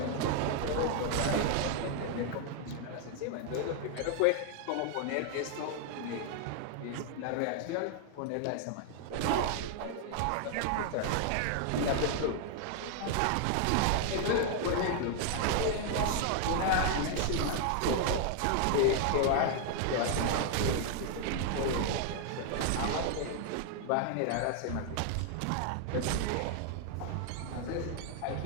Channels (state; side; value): different; both; correlation 0.00